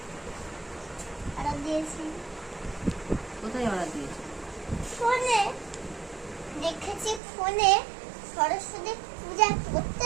order দিয়েছি। কোথায় অর্ডার দিয়েছো? ফোনে দেখেছি, ফোনে সরস্বতী পূজা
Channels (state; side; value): drops out; left; at 7.2 s